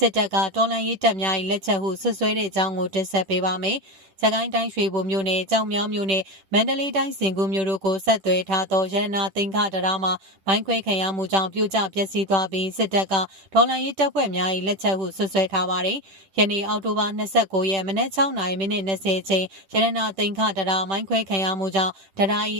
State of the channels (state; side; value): late; left; 10 ms